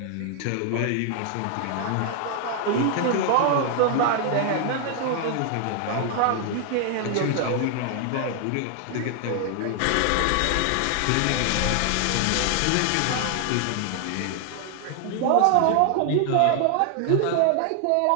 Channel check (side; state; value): both; different; correlation 0.00